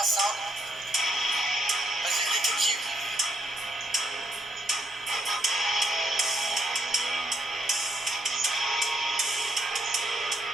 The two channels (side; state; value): both; normal; correlation 0.75